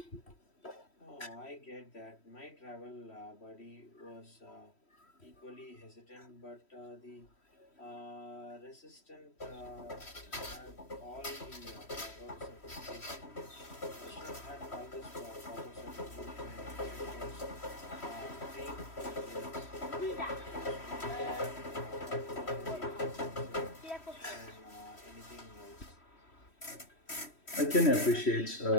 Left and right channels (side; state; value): right; late; 3.1 ms